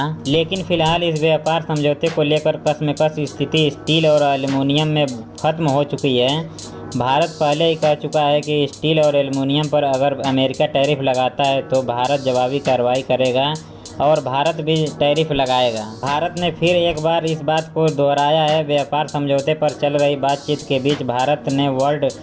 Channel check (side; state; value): both; identical; correlation 1.00